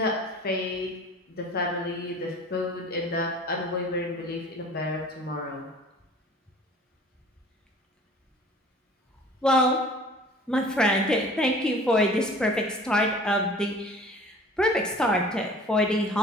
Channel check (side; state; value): both; normal; correlation 0.47